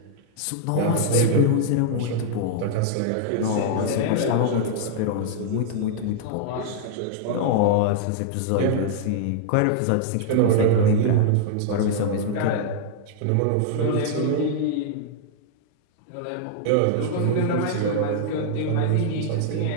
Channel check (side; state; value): both; different; correlation -0.01